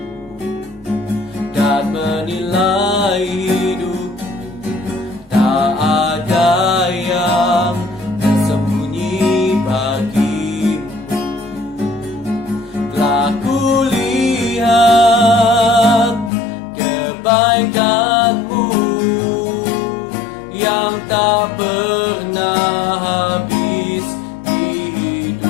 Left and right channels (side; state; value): right; drops out; at 16.3 s